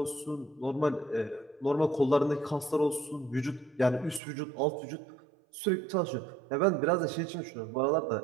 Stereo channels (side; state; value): left; drops out; at 4.2 s